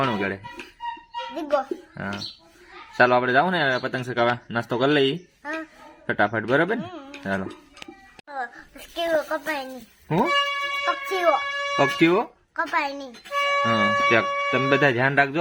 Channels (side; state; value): both; identical; correlation 1.00